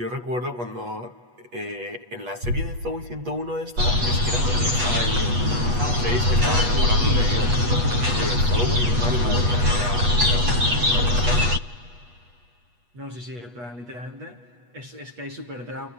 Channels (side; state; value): left; late; 8.3 ms